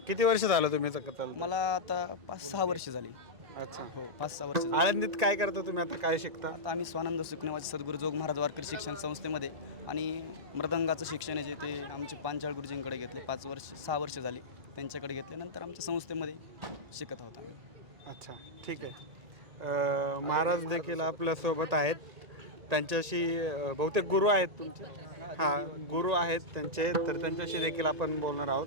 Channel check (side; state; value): left; late; 1.9 ms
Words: किती वर्ष झालं तुम्ही करताल? मला आता 5-6 वर्ष झाली. अच्छा. हो, 5-6 वर्ष झाली. आळंदीत काय करता तुम्ही आता? काय शिकता? आता आम्ही स्वानंद सुखनेवाचे सद्गुरू जोग महाराज वारकरी शिक्षण संस्थेमध्ये आणि मृदंगाचं शिक्षण आहे जे ते आमचे पांचाळ गुरुजींकडे घेतले. 6 वर्ष झाली त्यांच्याकडे घेतले. नंतर आमच्या संस्थेमध्ये शिकत आहोत आम्ही. अच्छा, ठीक आहे. महाराज देखील आपल्यासोबत आहेत. त्यांच्याशी बहुतेक गुरु आहेत तुमचे? हां, गुरु आहेत त्यांचे, तर त्यांच्याशी देखील आपण बोलणार आहोत.